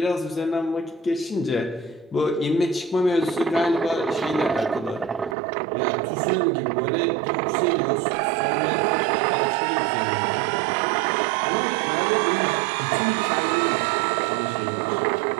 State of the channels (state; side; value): drops out; left; at 5.4 s